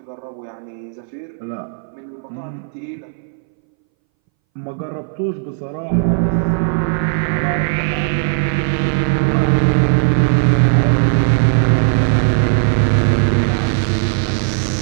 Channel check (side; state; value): left; silent; 64 dB below the other